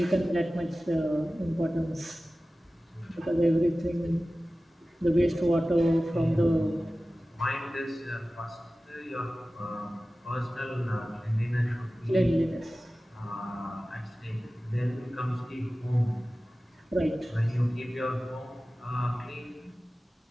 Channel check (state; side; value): normal; both; correlation 0.96